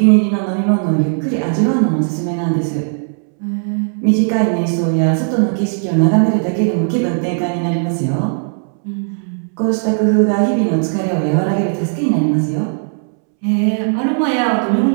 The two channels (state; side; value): silent; left; 69 dB below the other